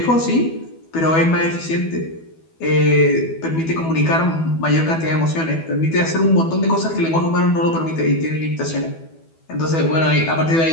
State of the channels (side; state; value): right; late; 12 ms